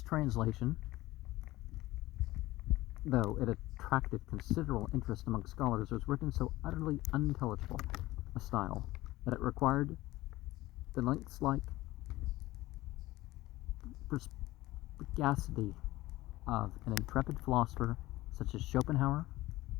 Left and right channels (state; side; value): quieter; right; 17.9 dB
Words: translation, though it attracted considerable interest among scholars, was written so utterly unintelligible a style that it required the lynx-like perspicacity of an intrepid philosopher such as Schopenhauer